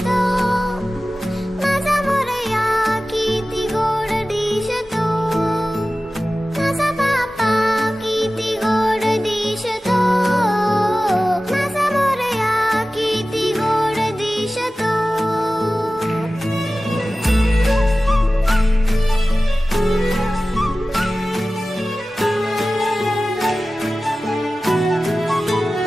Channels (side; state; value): both; normal; correlation 0.96